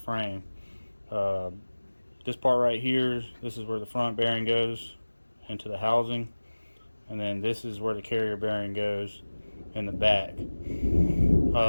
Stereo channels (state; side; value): inverted; both; correlation -1.00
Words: This part right here, this is where the front bearing goes into the housing, and then this is where the carrier bearing goes in the back.